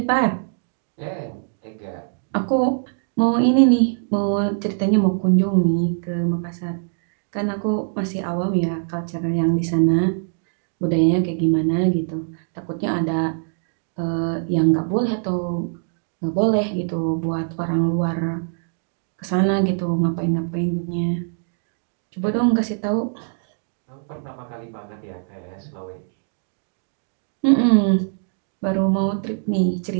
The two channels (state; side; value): silent; left; digital silence